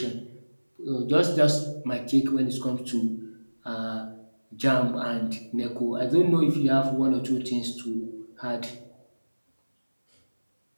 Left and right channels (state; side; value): inverted; both; correlation -1.00